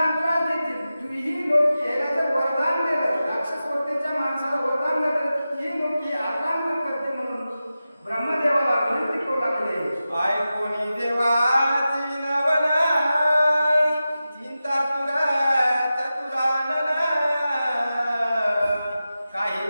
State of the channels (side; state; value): both; inverted; correlation -0.93